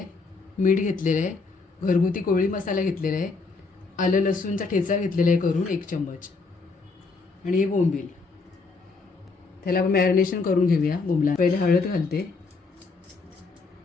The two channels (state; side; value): quieter; right; 4.1 dB